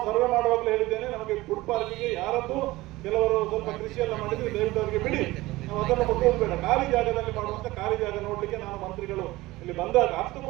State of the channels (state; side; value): quieter; left; 19.1 dB